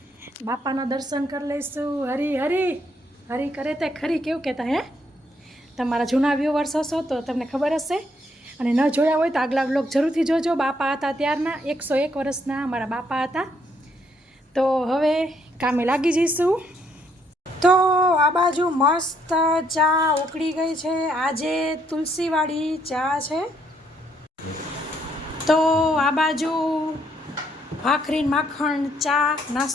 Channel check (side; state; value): both; normal; correlation 0.71